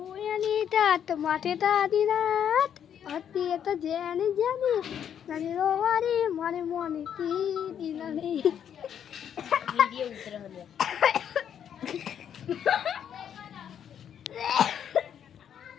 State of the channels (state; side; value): quieter; right; 8.9 dB